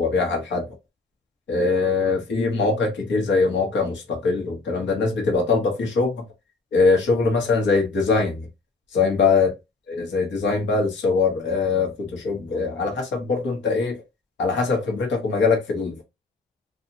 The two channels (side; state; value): right; quieter; 3.8 dB